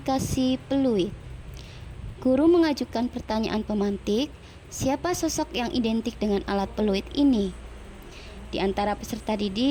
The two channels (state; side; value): identical; both; correlation 1.00